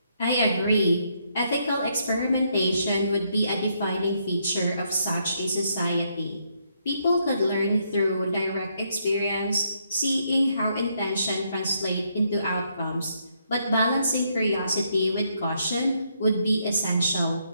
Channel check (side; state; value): both; inverted; correlation -0.74